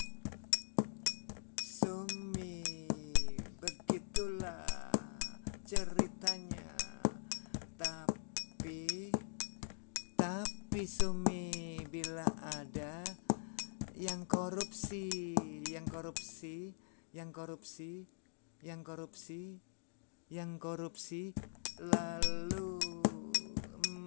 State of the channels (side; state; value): right; silent; digital silence